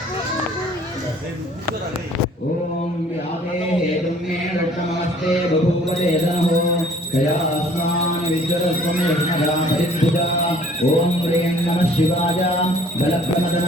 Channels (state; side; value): normal; both; correlation 0.55